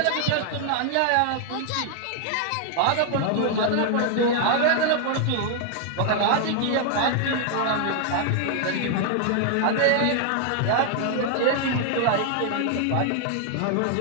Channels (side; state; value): both; different; correlation 0.00